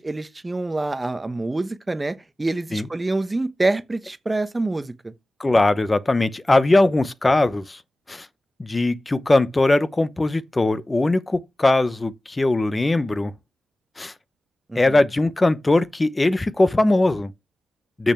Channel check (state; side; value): normal; both; correlation 0.97